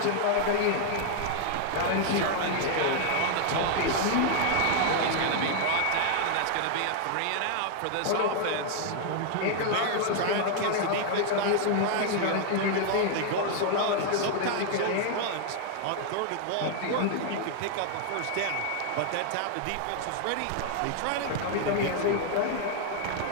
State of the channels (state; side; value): different; both; correlation 0.00